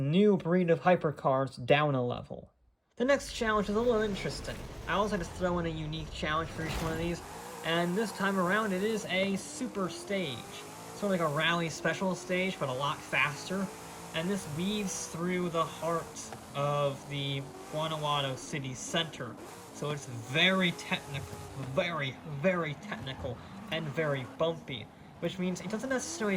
breed of hypercars down a level. The next challenge is a little interesting. I always like to throw in a unique challenge for each one of these, and this time around it is a super stage. Sort of like a rally special stage, but a lot faster, and this weaves through the heart of the Guanajuato city center. So it's very technical, very, very technical, and very bumpy, which means it doesn't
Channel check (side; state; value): both; identical; correlation 1.00